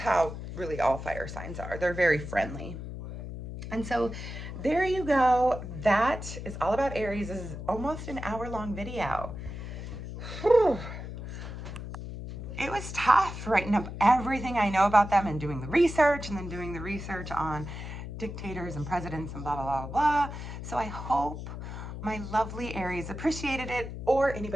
really all fire signs are. They're very friendly. And so there you go. That is all about Aries. This is almost an hour-long video. Whew. It was tough writing up everything I know about them and doing the research, and then doing the research on dictators and presidents and blah, blah, blah, blah. So I hope my lovely Aries appreciated it, or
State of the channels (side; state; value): left; noise; hum, 8 dB below the sound